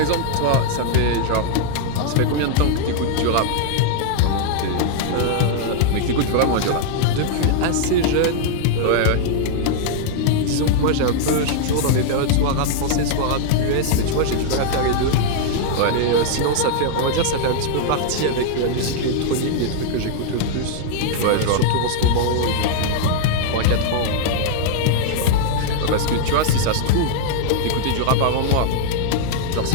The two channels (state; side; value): different; both; correlation 0.00